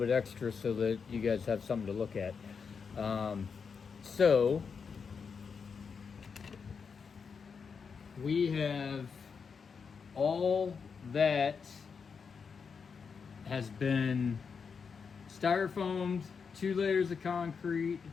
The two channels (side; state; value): right; quieter; 5.8 dB